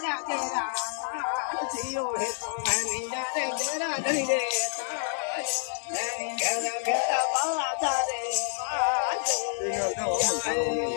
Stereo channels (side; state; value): right; silent; 59 dB below the other